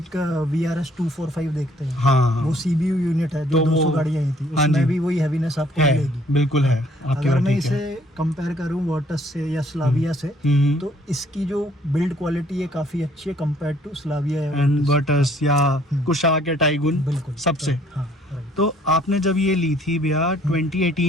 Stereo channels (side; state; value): both; normal; correlation 0.62